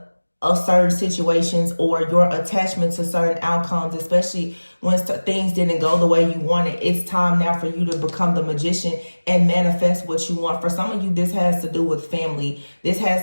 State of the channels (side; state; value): both; inverted; correlation -1.00